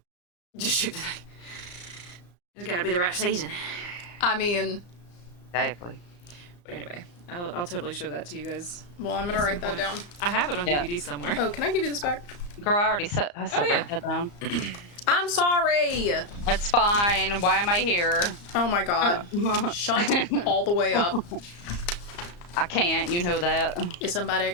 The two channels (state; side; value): late; right; 34 ms